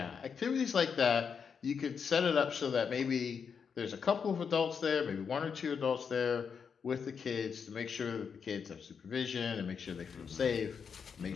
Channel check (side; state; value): right; quieter; 6.4 dB